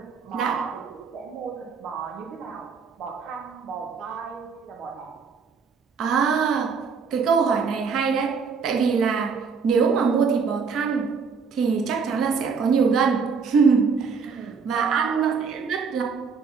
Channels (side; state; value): left; quieter; 5.5 dB